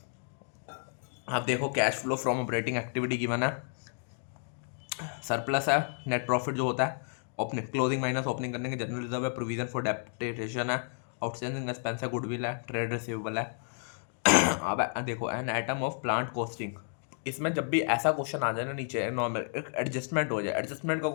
आप देखो, cash flow from operating activity given है, सरप्लस है, नेट प्रॉफिट जो होता है, ओपनिंग क्लोजिंग माइनस ओपनिंग करने के जनरल रिजर्व है, प्रोविजन फॉर डेप्रिसिएशन है, आउटस्टैंडिंग एक्सपेंस है, गुडविल है, ट्रेड रिसीवेबल है। अब देखो, an item of plant costing, इसमें जब भी ऐसा क्वेश्चन आ जाए ना नीचे नॉर्मल एक एडजस्टमेंट हो जाए, एडजस्टमेंट का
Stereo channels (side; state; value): right; silent; 57 dB below the other